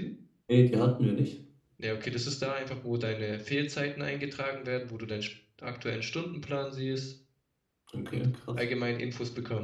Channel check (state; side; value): identical; both; correlation 1.00